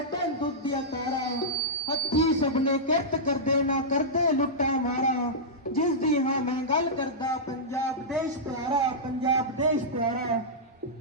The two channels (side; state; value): both; normal; correlation -0.12